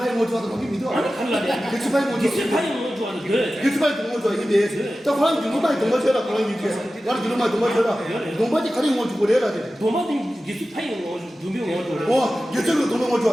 뭐 좋아도 거기 믿어. 아니 갈라네. 기술 파이 뭐 기술 좋아. 파이 뭐죠? 그래. 기술 파이 뭐 좋아. 이게 저 사람 유로마이 동거쳐라 그런 얘기. 나는 유로마이 동거쳐라. 동바지 가리 뭐 주고 내라 돼. 도마딘 기술 파이 뭐죠? 두명 뭐죠? 와, 여자로 도는 거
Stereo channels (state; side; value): normal; both; correlation 0.95